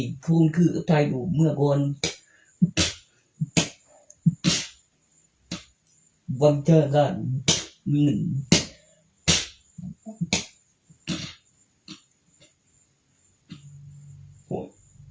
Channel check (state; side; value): identical; both; correlation 1.00